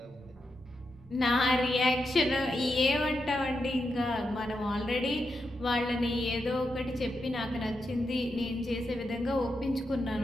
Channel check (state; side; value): noise; left; rumble, 28 dB below the sound